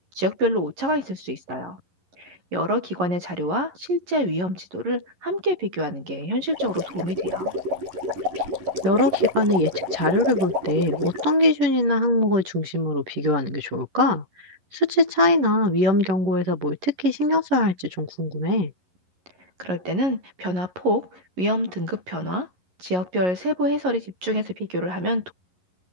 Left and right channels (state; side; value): late; left; 11 ms